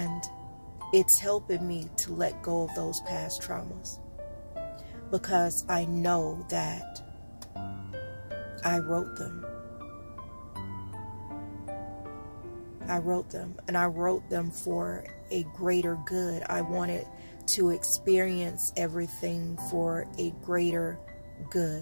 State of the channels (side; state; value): both; inverted; correlation -1.00